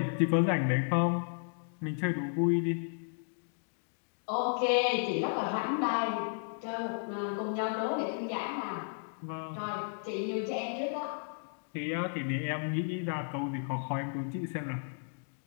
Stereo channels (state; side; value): silent; right; digital silence